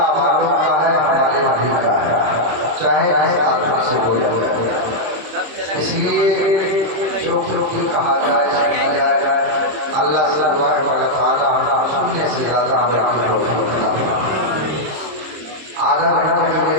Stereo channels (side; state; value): left; late; 26 ms